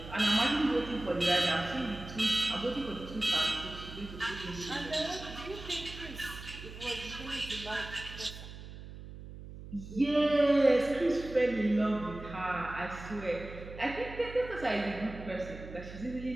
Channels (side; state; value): right; noise; hum, 13 dB below the sound